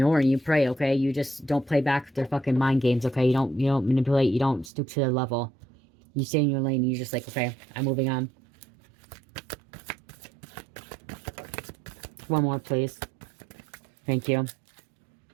and you pray, okay? You just don't play back their fucking mind games, okay? You don't manipulate, you don't stoop to their level. You stay in your lane and you're just like, okay, I'm moving on. One more, please. Thank you.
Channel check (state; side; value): drops out; left; at 4.7 s